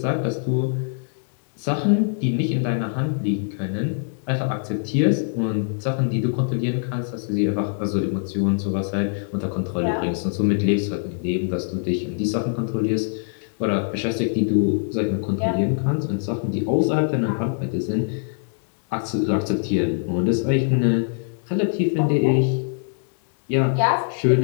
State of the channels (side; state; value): right; silent; digital silence